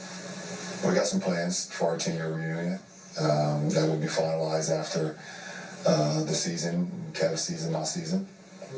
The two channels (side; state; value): both; identical; correlation 1.00